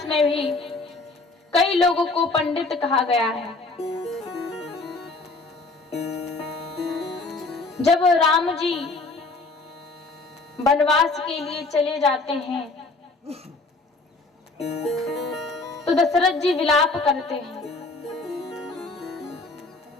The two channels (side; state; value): right; quieter; 3.4 dB